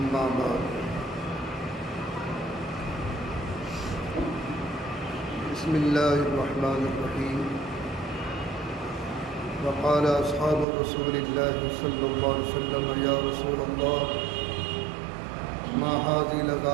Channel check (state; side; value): drops out; left; at 10.7 s